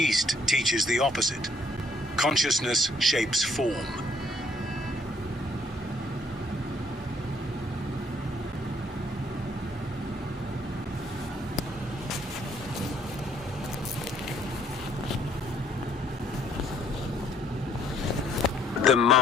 teaches the opposite. Consciousness shapes form. Them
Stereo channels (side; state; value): both; normal; correlation 0.64